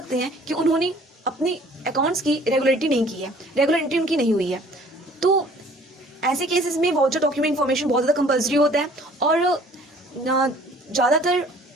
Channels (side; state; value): both; normal; correlation 0.54